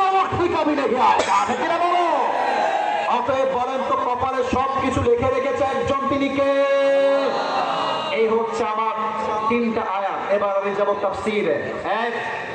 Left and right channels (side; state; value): both; identical; correlation 1.00